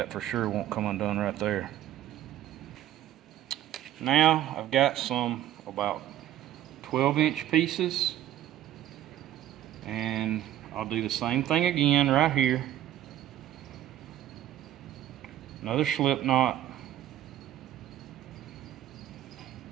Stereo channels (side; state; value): left; quieter; 12.3 dB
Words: for sure won't come undone right there. Now I've got some about 12-inch pieces, and I'll do the same thing again right here. Another slip knot.